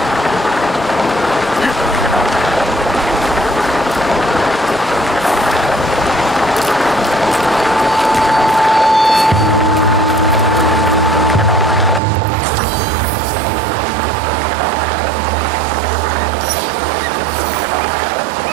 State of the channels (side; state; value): left; drops out; at 12.0 s